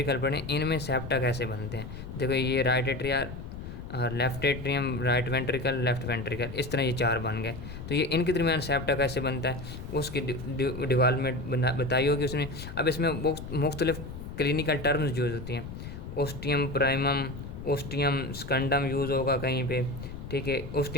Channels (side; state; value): left; noise; rumble, 10 dB below the sound